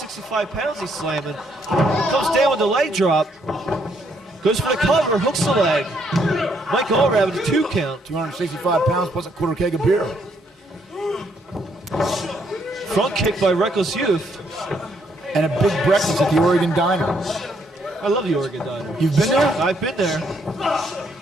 pounds he's slamming. Comes down with the leg drop. Goes for the cover, hooks the leg. Mike Allred with a 2 count. 265 pounds plus a quarter keg of beer. Front kick by Reckless Youth. And a big breakfast at the Oregon Diner. I love the Oregon Diner. You've been there? I've been there.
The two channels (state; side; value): normal; both; correlation 0.72